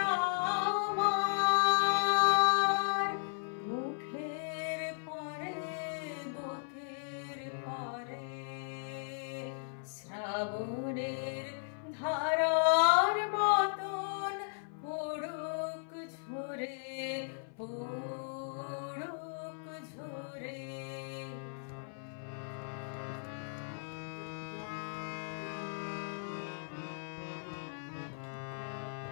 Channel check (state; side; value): silent; right; 54 dB below the other